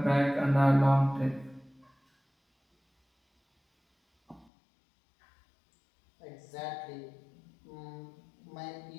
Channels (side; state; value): right; drops out; at 4.5 s